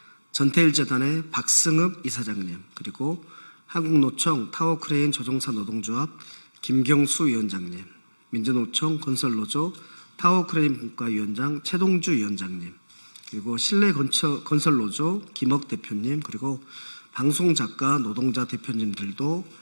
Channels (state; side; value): inverted; both; correlation -1.00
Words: 전태일재단의 박승읍 이사장님, 그리고 한국노총 타워크레인 조종사 노동조합 김경수 위원장님, 민주노총 건설노조 타워크레인 분과위원장 최동주 위원장님, 그리고 실내건설노조 김억 대표님, 그리고 방송작가 노동자 대표님들도